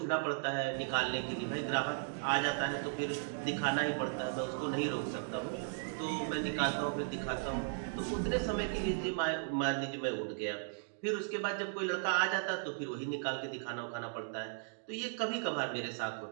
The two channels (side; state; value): left; silent; digital silence